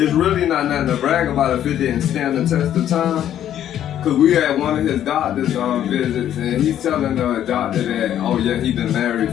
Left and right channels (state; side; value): quieter; right; 10.9 dB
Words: really not nothing to brag about if it didn't stand the test of time. Cause we had one of his doctors visits, and he's telling the doctor that, oh yeah, he been married